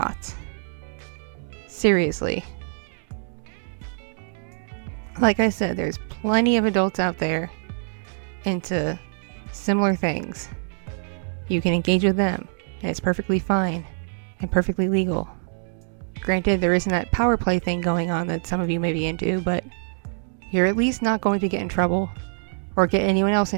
Seriously. Like I said, there's plenty of adults out there into similar things. You can engage with them, and it's perfectly fine and perfectly legal. Granted, there isn't that power play thing going on that some of you may be into, but you're at least not going to get in trouble or get anyone else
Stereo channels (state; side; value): silent; left; digital silence